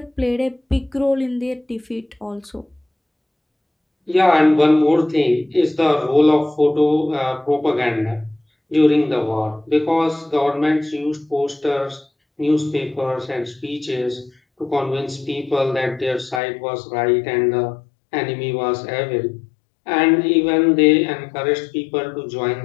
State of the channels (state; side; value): drops out; right; at 16.4 s